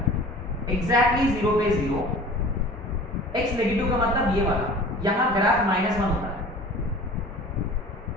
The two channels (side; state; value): both; normal; correlation 0.43